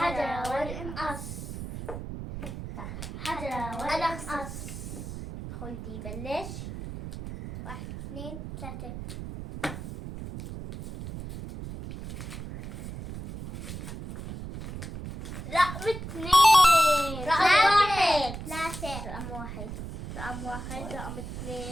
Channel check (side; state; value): right; noise; rumble, 9 dB below the sound